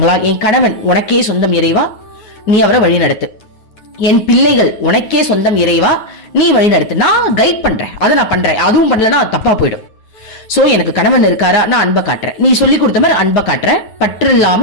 என் கணவன் உனக்கே சொந்தம் இறைவா, நீ அவரை வழி நடத்து. என் பிள்ளைகள் உனக்கே சொந்தம் இறைவா, நீ வழி நடத்து. நான் கைட் பண்றேன், அதை நான் பண்றேன். அதுவும் பண்ணலன்னா அது தப்பா போயிடும். சோ எனக்கு கணவன் இருக்காரா, நான் அன்பை காட்டுறேன். நீ சொல்லி கொடுத்த மாதிரி அன்பை காட்டுறேன். பற்று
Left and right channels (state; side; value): late; right; 9.7 ms